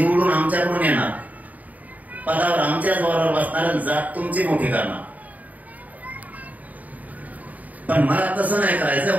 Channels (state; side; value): late; left; 0.075 ms